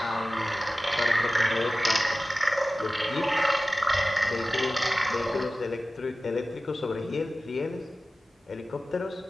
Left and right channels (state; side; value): normal; both; correlation 0.96